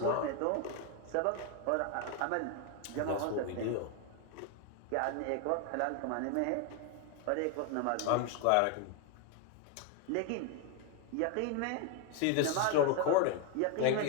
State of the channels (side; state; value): both; different; correlation 0.01